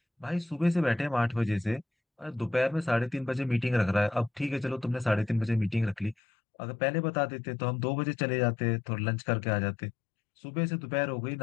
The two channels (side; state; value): right; drops out; at 6.2 s